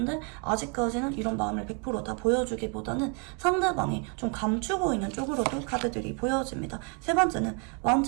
아직까지는 이런 마음을 100% 다 보여주기보다는 상대방이 좀 감추고 있는 쪽으로도 카드들이 보여집니다. 세 번째는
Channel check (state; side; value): quieter; left; 35.6 dB